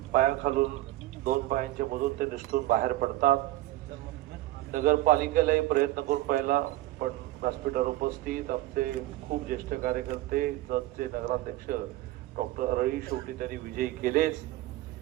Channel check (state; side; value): quieter; left; 16.5 dB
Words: पायाखालून 2 पायांच्या मधून ते निसटून बाहेर पडतात. नगरपालिकेलाही प्रयत्न करून पाहिला, पण व्यासपीठावर उपस्थित आमचे खूप ज्येष्ठ कार्यकर्ते, जतचे नगराध्यक्ष डॉक्टर अरळी शेवटी त्यांनी विजयी केलेच.